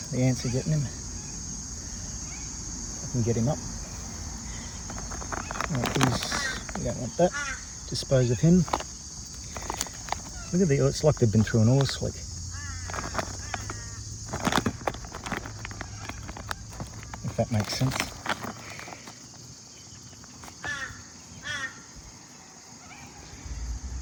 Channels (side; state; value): both; identical; correlation 1.00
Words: The ants are getting him. I can get him up. Right, we don't want that. Dispose of him. Look at the, it's like they've been through an oil slick. If that makes sense.